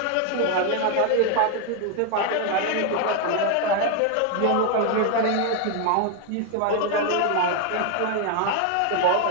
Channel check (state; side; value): different; both; correlation 0.01